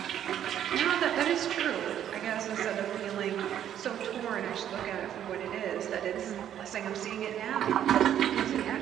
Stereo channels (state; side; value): quieter; left; 10.3 dB